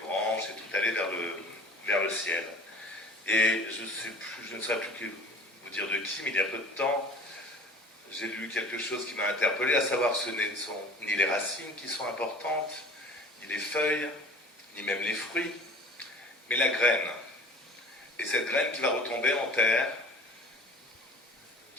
et tout aller vers le ciel. Et je ne saurais plus vous dire de qui, mais il y a peu de temps, j'ai lu quelque chose qui m'a interpellé, à savoir que ce ne sont ni les racines qui sont importantes, ni les feuilles, ni même les fruits, mais la graine. Et cette graine qui va retomber en terre,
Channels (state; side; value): normal; both; correlation 0.43